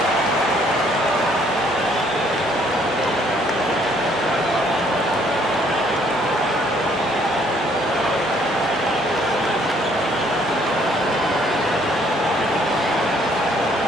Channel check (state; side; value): normal; both; correlation 0.64